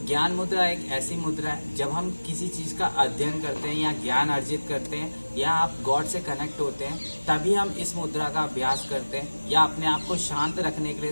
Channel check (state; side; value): inverted; both; correlation -1.00